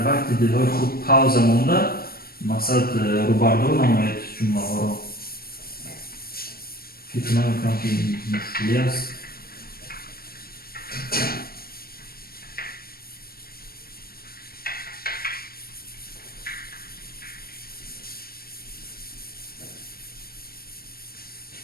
وقت دلهای خود پاوزه مونده مقصد روبردو نمایید جمله ها رو. فکر نمیکنم که این مشکلی است.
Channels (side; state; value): right; late; 0.44 ms